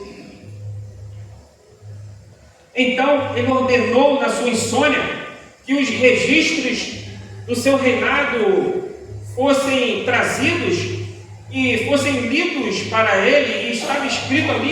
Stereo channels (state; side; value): identical; both; correlation 1.00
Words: Então, ele ordenou na sua insônia que os registros do seu reinado fossem trazidos e fossem lidos para ele, e estava escrito